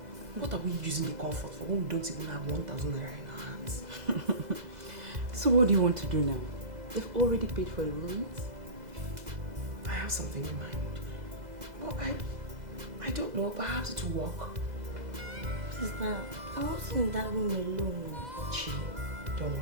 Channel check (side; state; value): left; late; 2.0 ms